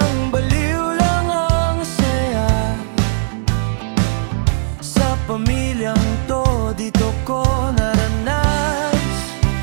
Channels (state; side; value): silent; left; digital silence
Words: baliw lang ang saya. Sa pamilyang to, dito ko naranas